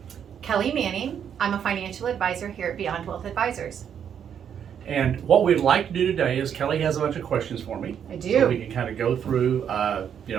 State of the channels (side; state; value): left; quieter; 8.4 dB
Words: Kelley Manning. I'm a financial advisor here at Beyond Wealth Advisors. And what we'd like to do today is Kelley has a bunch of questions for me. I do. So we can kind of go through,